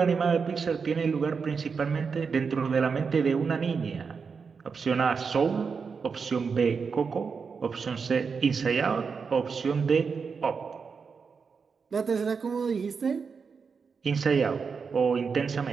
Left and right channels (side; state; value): left; quieter; 5.5 dB